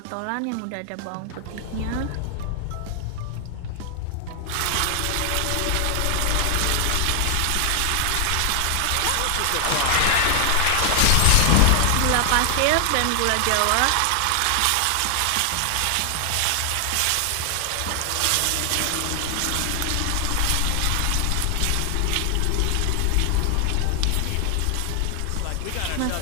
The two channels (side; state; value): both; different; correlation 0.00